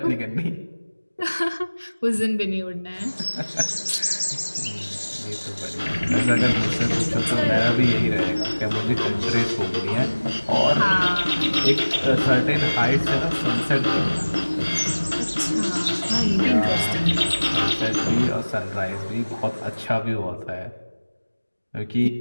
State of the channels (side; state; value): both; inverted; correlation -1.00